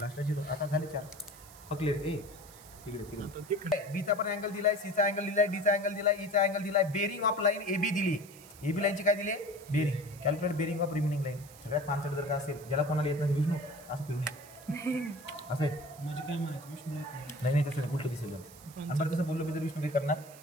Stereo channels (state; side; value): noise; right; hiss, 20 dB below the sound